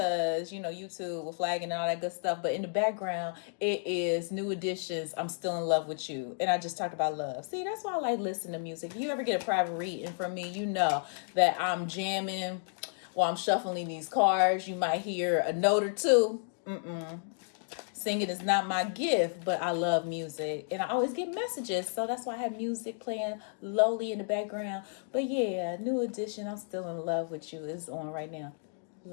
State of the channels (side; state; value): right; silent; digital silence